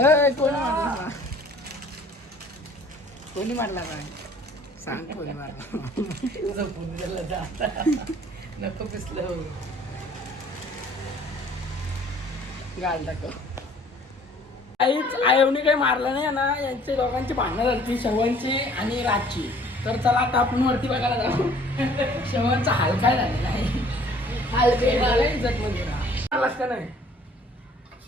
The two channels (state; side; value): normal; both; correlation 0.55